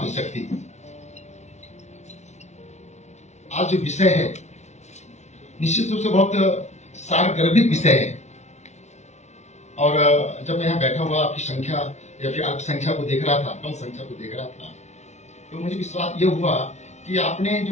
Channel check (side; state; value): right; late; 0.33 ms